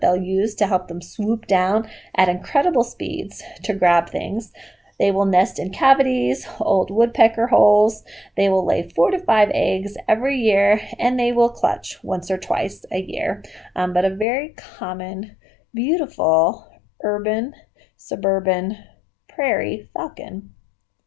they'll use to help them swoop down at incredible speeds to grab things. They will nest in cavities, old woodpecker holes. They will lay 4 to 5 eggs every year, and they will clutch once or twice a year. But a very common, beautiful, urban, suburban, prairie falcon.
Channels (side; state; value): right; drops out; at 14.2 s